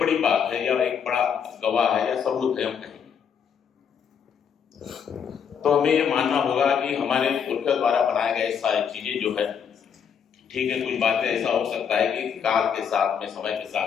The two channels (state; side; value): quieter; right; 7.4 dB